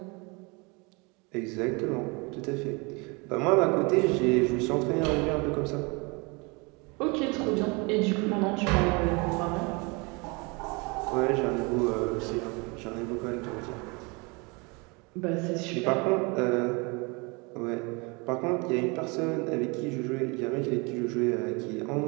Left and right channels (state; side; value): quieter; left; 28.8 dB